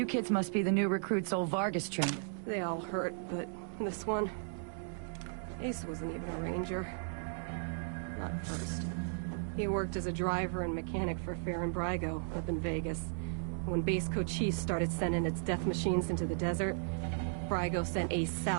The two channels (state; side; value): silent; left; digital silence